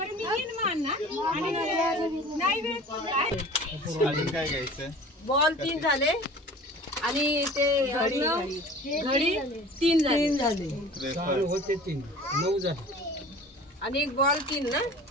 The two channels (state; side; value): normal; both; correlation 0.43